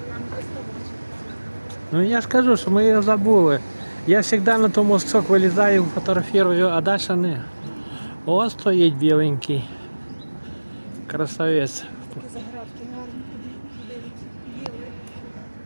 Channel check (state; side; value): inverted; both; correlation -1.00